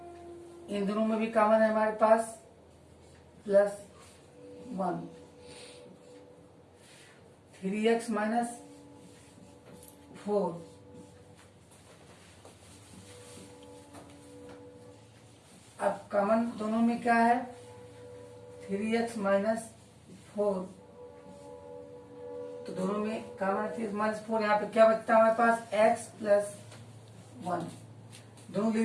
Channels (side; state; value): both; identical; correlation 1.00